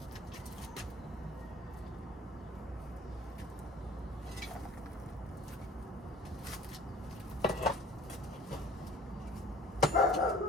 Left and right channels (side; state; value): both; normal; correlation 0.48